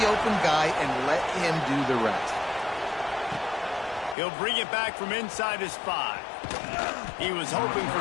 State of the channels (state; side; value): drops out; right; at 4.2 s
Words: open guy, and let him do the rest. He'll bring it back from inside his 5. He was hoping for